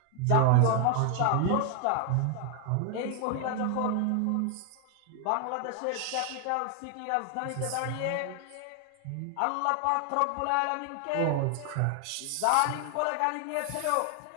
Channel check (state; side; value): different; both; correlation 0.00